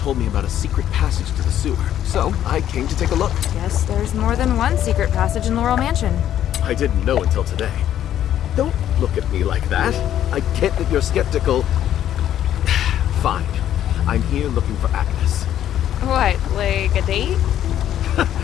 me about a secret passage to the sewer, so I came to take a look. Guess there's more than one secret passage in Laurel Mansion. I didn't know until today. Don't look at me like that. I get that you're skeptical. Fine. I'm here looking for Agnes. What, like a date?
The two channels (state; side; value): quieter; right; 11.1 dB